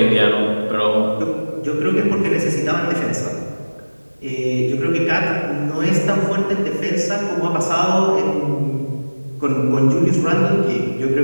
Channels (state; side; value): inverted; both; correlation -1.00